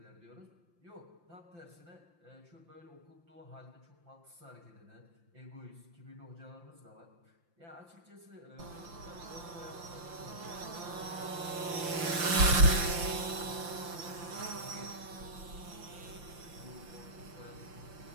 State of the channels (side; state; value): left; late; 5.8 ms